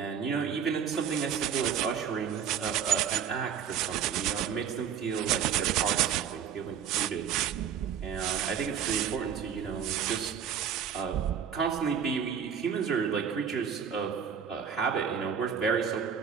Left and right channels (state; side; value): quieter; left; 7.8 dB